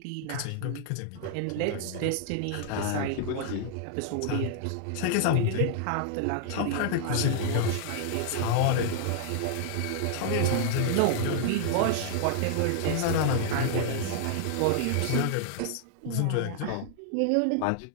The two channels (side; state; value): both; different; correlation -0.01